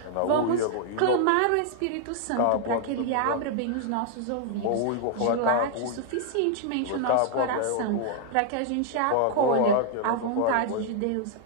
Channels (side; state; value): both; different; correlation 0.00